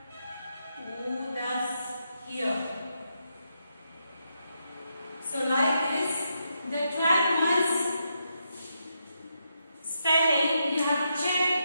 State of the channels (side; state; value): both; inverted; correlation -0.81